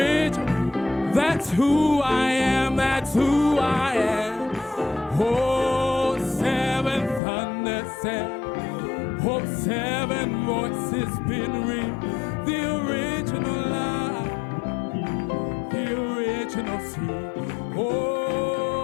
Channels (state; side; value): drops out; right; at 7.2 s